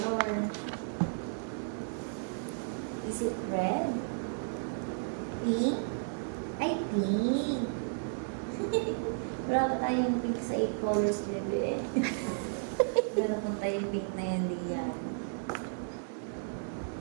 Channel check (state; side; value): silent; left; digital silence